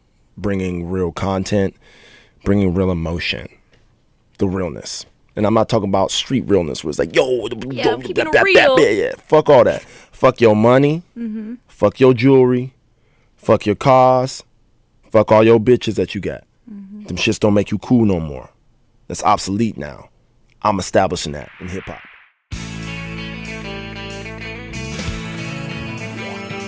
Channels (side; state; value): both; identical; correlation 1.00